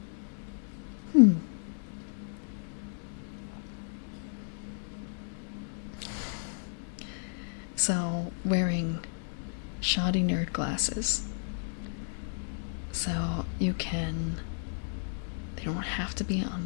So, wearing shoddy nerd glasses. So, you can... They don't have to be on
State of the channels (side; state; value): right; silent; digital silence